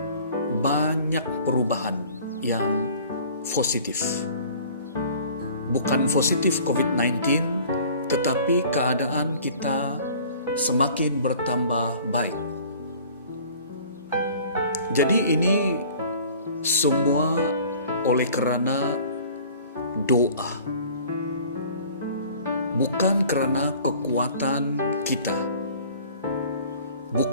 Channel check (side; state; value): both; inverted; correlation -0.49